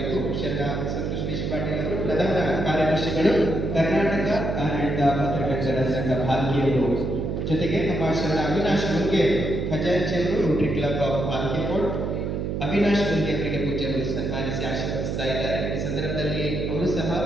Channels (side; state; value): right; noise; hum, 2 dB below the sound